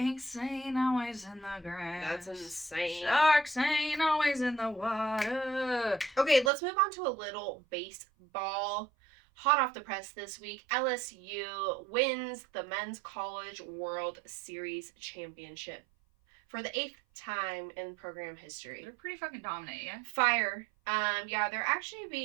ain't always in the grass. That's insane. Sharks ain't always in the water. Okay, let's move on to a little baseball. Hot off the press this week, LSU wins the Men's College World Series Championship for the 8th time in program history. They're pretty fucking dominant, yeah? Fire. Yeah, they're actually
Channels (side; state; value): left; drops out; at 6.5 s